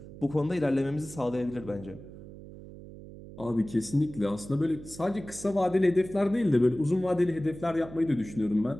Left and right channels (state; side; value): noise; right; hum, 15 dB below the sound